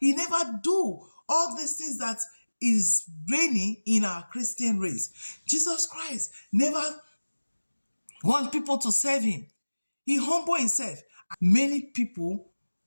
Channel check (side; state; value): both; inverted; correlation -1.00